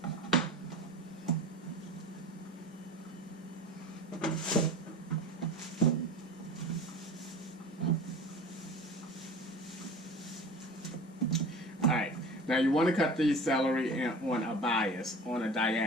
Alright. Now you want to cut these celery on a bias, on a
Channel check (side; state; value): both; normal; correlation 0.37